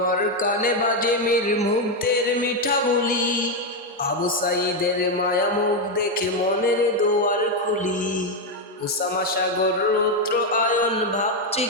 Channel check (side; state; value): both; normal; correlation 0.05